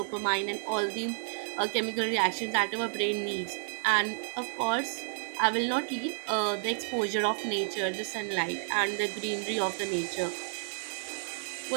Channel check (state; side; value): silent; left; digital silence